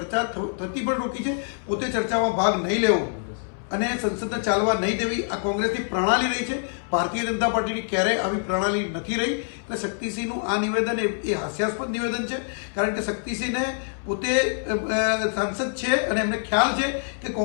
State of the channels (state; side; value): silent; right; 62 dB below the other